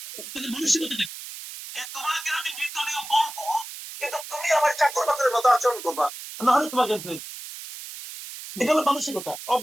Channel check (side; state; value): right; noise; hiss, 11 dB below the sound